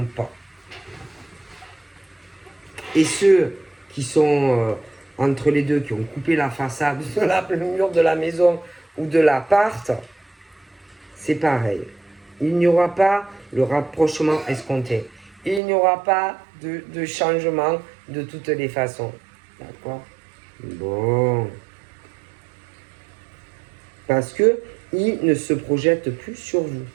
pas. Et ceux qui sont entre les deux, qui ont coupé la façade, le mur de la maison ou de l'appart, c'est pareil. Il n'y aura pas le rapprochement escompté. Il n'y aura pas de changement de toutes les façons. D'accord? Bon. Parce que ils ne se projettent plus sur vous.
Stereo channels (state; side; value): drops out; left; at 15.6 s